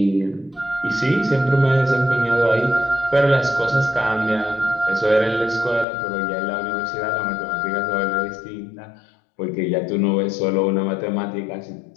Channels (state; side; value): drops out; right; at 5.9 s